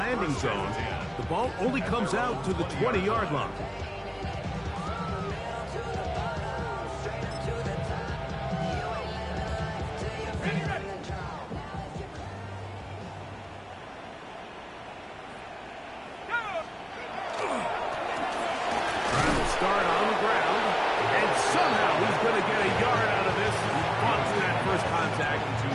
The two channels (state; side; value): identical; both; correlation 1.00